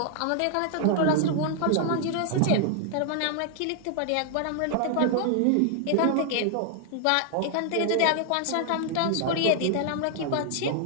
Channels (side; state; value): both; different; correlation 0.00